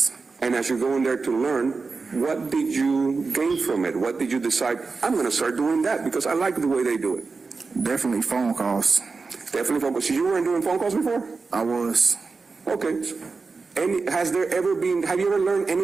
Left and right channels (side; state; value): left; quieter; 4.3 dB